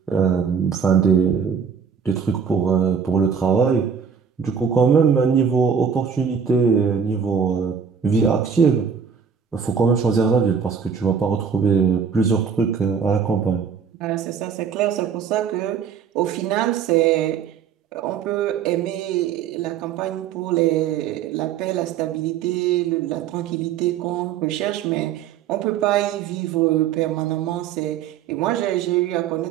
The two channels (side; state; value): left; quieter; 6.9 dB